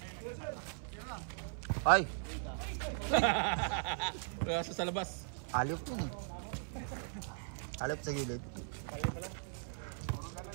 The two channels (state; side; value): silent; left; 52 dB below the other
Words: Ay, Kaya sa labas. alip yun eh. Alip sa gilid.